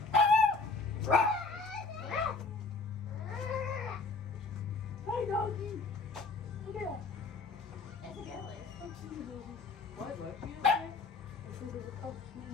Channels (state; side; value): quieter; right; 4.0 dB